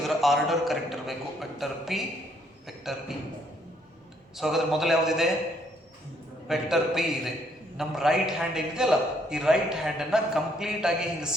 ಆರ್ಡರ್ ಕರೆಕ್ಟ್ ಇರಬೇಕು. Vector P, vector E. So ಹಾಗಾದ್ರೆ ಮೊದಲು ಯಾವ್ದಿದೆ? ವೆಕ್ಟರ್ ಪಿ ಇದೆ. ನಮ್ಮ ರೈಟ್ ಹ್ಯಾಂಡ್ ಏನಿದೆಯಲ್ಲ, ಈ ರೈಟ್ ಹ್ಯಾಂಡ್ ಅನ್ನ ಕಂಪ್ಲೀಟ್ ಆಗಿ ಹಿಂಗೆ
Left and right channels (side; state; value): both; normal; correlation 0.68